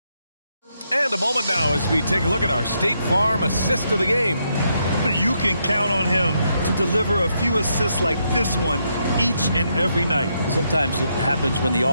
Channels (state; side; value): inverted; both; correlation -0.79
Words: And a moment now as we take a look at our State Farm assist of the game. You can count on him to deliver a few assists like this one each and every night. Sometimes it happens when the